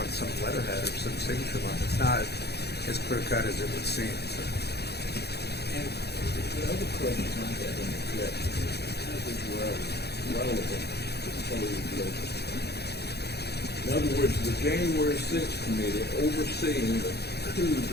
some letterhead or some signature line. It's not as clear-cut as it would seem. So. And the other question I had in the objection is, how is this relevant to the proposed legislation? In other words, the January 6th committee overseeing the coup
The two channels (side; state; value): right; late; 0.48 ms